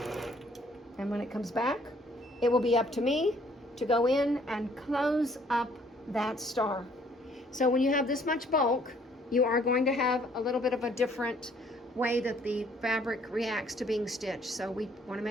And when it comes back, it will be up to me to go in and close up that star. So when you have this much bulk, you are going to have a little bit of a different way that the fabric reacts to being stitched. So we want to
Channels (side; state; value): both; normal; correlation 0.62